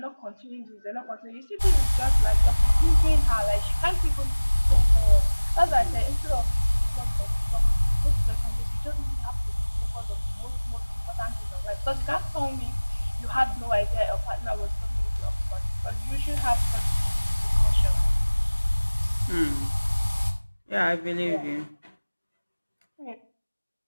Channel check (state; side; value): inverted; both; correlation -1.00